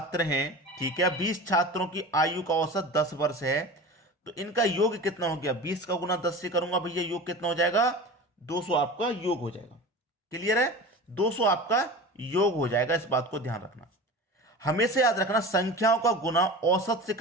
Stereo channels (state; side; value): normal; both; correlation 0.33